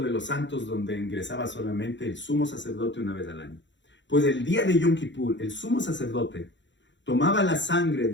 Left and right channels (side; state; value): right; late; 0.53 ms